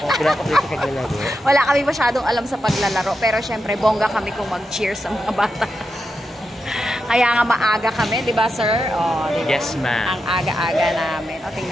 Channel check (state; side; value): normal; both; correlation 0.87